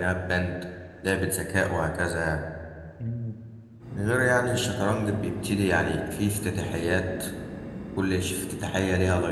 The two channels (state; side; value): identical; both; correlation 1.00